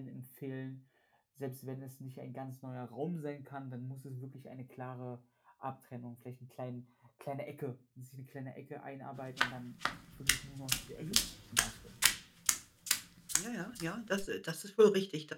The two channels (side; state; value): both; identical; correlation 1.00